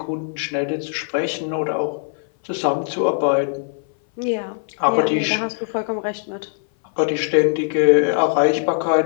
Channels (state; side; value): silent; right; 58 dB below the other